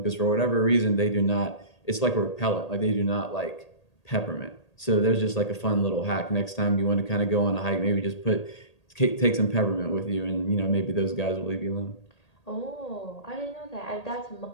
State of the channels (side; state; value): right; late; 1.8 ms